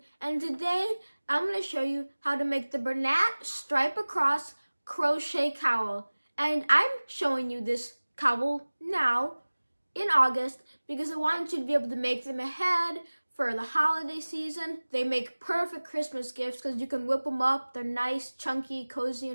and today I'm going to show you how to make the Bernat stripe across crochet cowl. And I'm showing you this cowl now in August because I wanted you to be able to make them ahead for the holiday season. They make perfect Christmas gifts because you can whip them up. They're nice, chunky, cozy,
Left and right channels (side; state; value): both; inverted; correlation -1.00